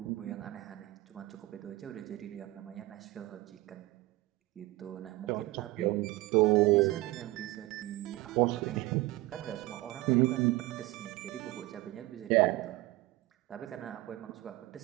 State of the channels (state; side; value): quieter; left; 19.1 dB